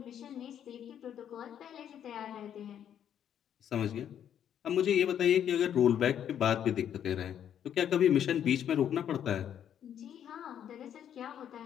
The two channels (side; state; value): right; quieter; 9.6 dB